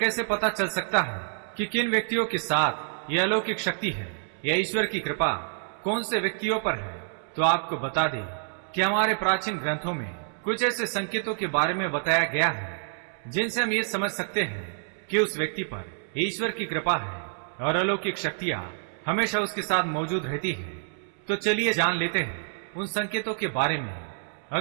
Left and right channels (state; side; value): silent; left; 60 dB below the other